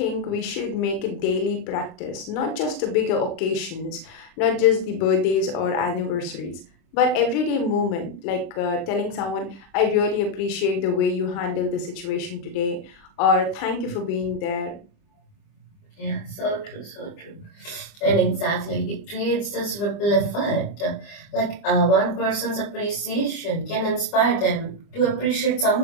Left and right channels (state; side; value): late; right; 30 ms